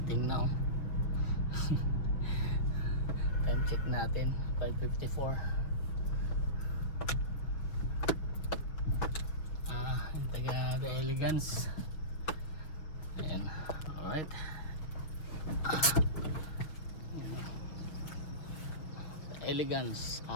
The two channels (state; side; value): late; right; 6.5 ms